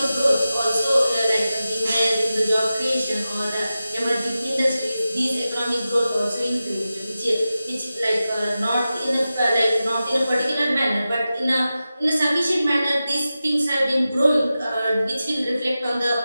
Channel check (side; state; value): both; inverted; correlation -0.93